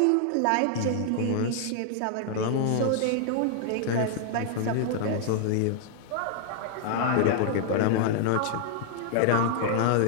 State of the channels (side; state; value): both; different; correlation 0.00